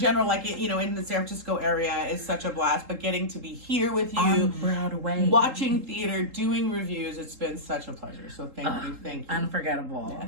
like, you know, in the San Francisco area is such a blast, but getting to be here with you, On Broadway. watching theater, doing reviews, it's been such a pleasure. So thank you. Unforgettable.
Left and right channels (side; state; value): left; late; 3.7 ms